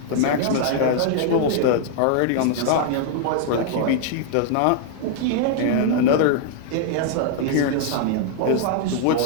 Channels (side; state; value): both; different; correlation -0.01